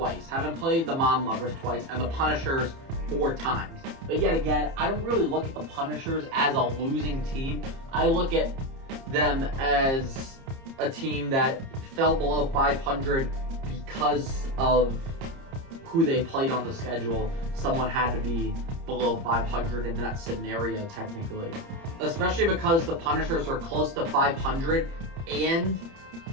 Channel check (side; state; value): left; late; 30 ms